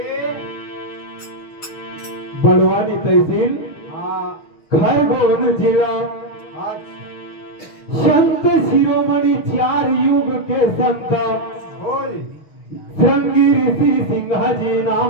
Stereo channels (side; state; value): right; late; 6.5 ms